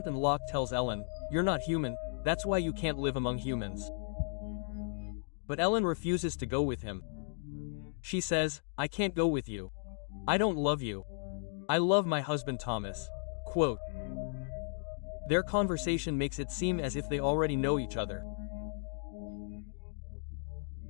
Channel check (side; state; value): right; silent; digital silence